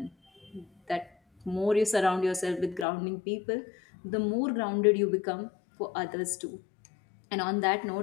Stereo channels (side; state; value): right; drops out; at 2.9 s